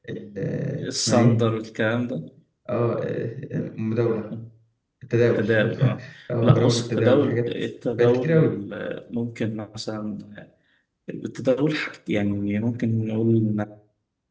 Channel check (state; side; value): identical; both; correlation 1.00